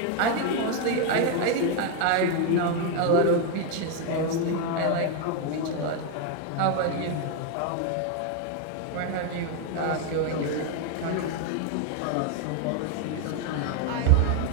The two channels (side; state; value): both; different; correlation 0.01